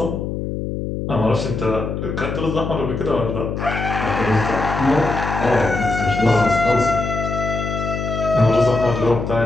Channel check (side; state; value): left; noise; hum, 4 dB below the sound